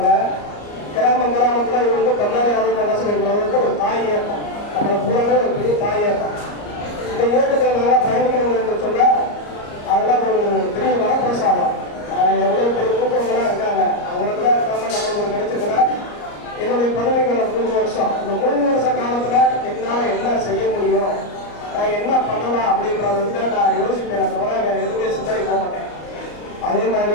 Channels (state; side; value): late; right; 34 ms